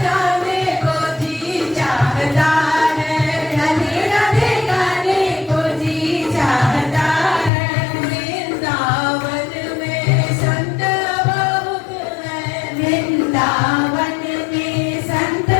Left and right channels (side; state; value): right; drops out; at 7.5 s